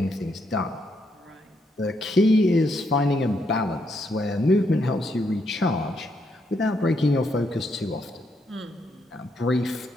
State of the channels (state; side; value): normal; both; correlation 0.77